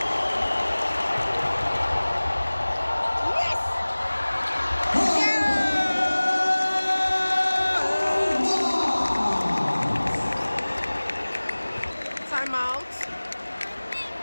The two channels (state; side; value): inverted; both; correlation -1.00